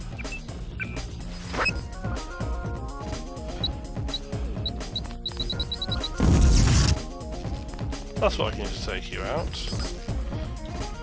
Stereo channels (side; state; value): both; identical; correlation 1.00